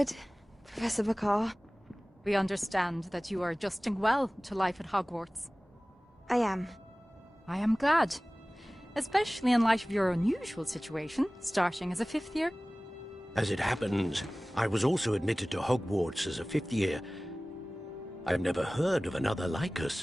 Professor McCaw. We understand that you are adjusting well to life at Hogwarts. I am. I am glad. Especially in light of your unusual situation, starting as a 5th year. As it happens, I was also admitted to Hogwarts as a 5th year. I've never heard of another like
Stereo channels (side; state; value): both; normal; correlation 0.98